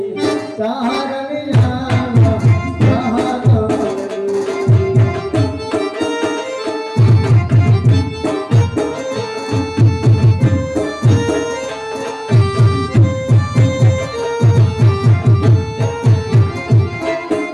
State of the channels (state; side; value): identical; both; correlation 1.00